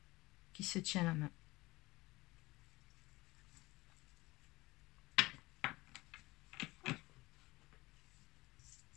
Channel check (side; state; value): right; quieter; 20.6 dB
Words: qui se tient la main.